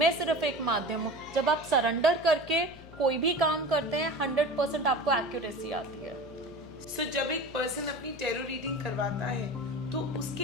सिर्फ एक माध्यम हूँ. जब आप सरेंडर करके कोई भी काम करते हैं 100% आपको एक्यूरेसी आती है. सो जब एक पर्सन अपनी टैरो रीडिंग करवाता है तो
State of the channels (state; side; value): noise; left; hum, 19 dB below the sound